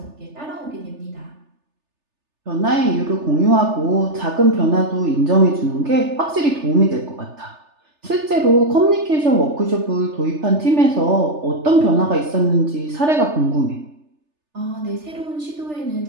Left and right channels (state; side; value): late; left; 3.3 ms